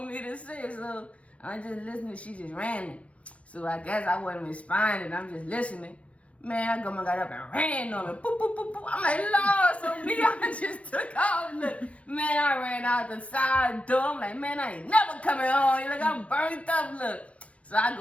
me to say? So I'm just listening. She just ran it. So I guess I wasn't responding. I'm just listening. Man, I got up and ran on her. Boop, boop, boop, boop. I'm like, Lord, so me, I just took off. Look, man, I ran out the side door. I'm like, man, I ain't never coming home. You're like, I'm burnt up, look. So I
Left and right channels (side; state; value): right; late; 0.064 ms